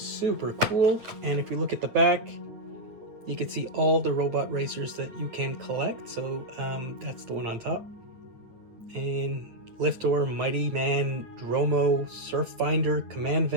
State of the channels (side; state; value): left; late; 9.2 ms